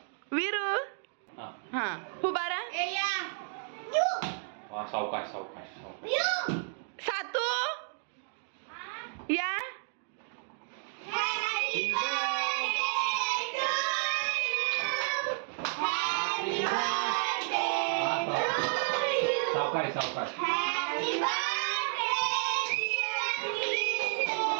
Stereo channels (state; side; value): silent; left; 57 dB below the other